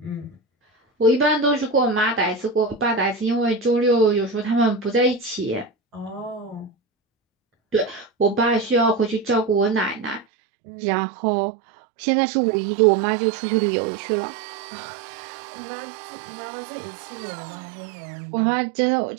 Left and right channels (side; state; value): left; drops out; at 10.2 s